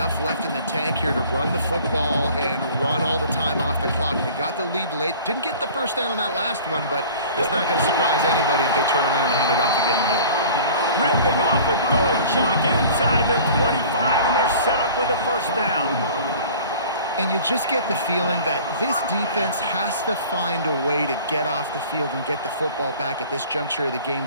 left in the tank here to run the football and run all the time off the clock. They got the lead late. Didn't get the first down on that last one, but it's not going to surprise anybody if they turn around and hand it off again here. Ripping off a good chunk inside the 25, and they're set up with a first down. And you just get the feeling that this defense has to find a way to get off the field and get the football back at this juncture of the game,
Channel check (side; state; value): both; inverted; correlation -0.45